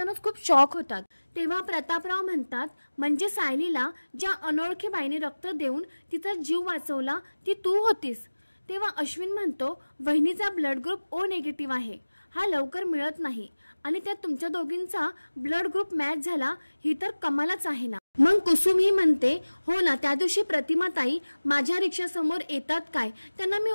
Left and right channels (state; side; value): inverted; both; correlation -1.00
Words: खूप शॉक होतात। तेव्हा प्रतापराव म्हणतात म्हणजे सायलीला ज्या अनोळखी बाईने रक्त देऊन तिचा जीव वाचवला ती तू होतीस? तेव्हा अश्विन म्हणतो वहिनीचा ब्लड ग्रुप ओ निगेटिव्ह आहे, हा लवकर मिळत नाही आणि त्यात तुमच्या दोघींचा ब्लड ग्रुप मॅच झाला, ही तर कमालच आहे ना। मग कुसुम ही म्हणते हो ना, त्या दिवशी प्रतिमाताई माझ्या रिक्षासमोर येतात काय, त्यांना मी